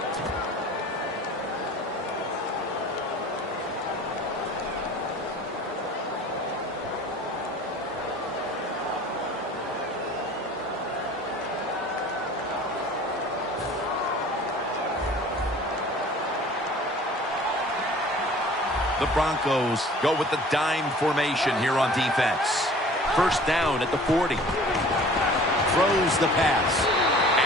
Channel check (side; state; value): both; normal; correlation 0.47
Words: The Broncos go with the dime formation here on defense. First down at the 40. Throws the pass.